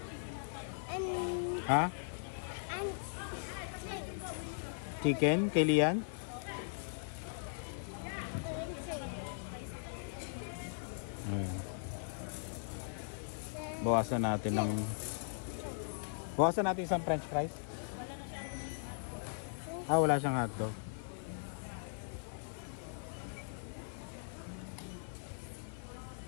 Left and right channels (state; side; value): silent; right; 52 dB below the other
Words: And Ha? chips. chicken kay Lian. Bawasan natin isang french fries. Wala siyang hotdog.